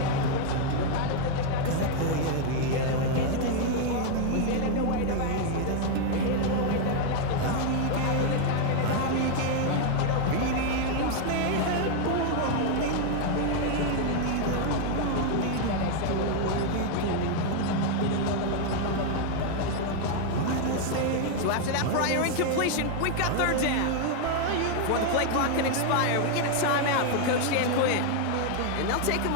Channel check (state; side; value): different; both; correlation 0.00